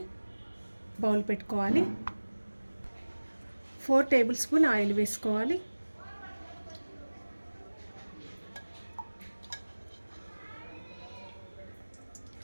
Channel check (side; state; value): both; inverted; correlation -1.00